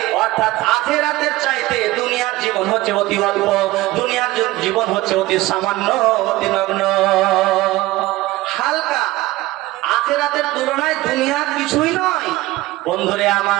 অর্থাৎ আখিরাতের চাইতে দুনিয়ার জীবন হচ্ছে অতি অল্প, দুনিয়ার জীবন হচ্ছে অতি সামান্য, অতি নগ্ন, হালকা। আখিরাতের তুলনায় দুনিয়া কিছুই নয়। বন্ধুরে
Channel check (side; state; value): left; quieter; 18.3 dB